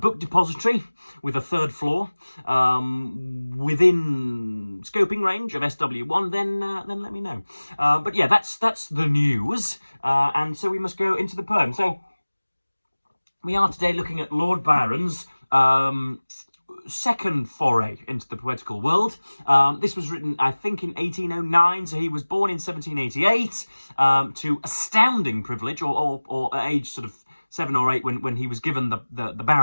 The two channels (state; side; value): inverted; both; correlation -1.00